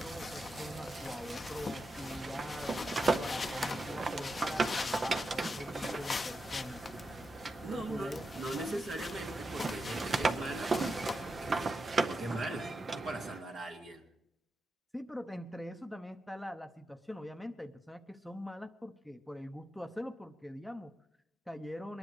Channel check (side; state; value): both; normal; correlation 0.87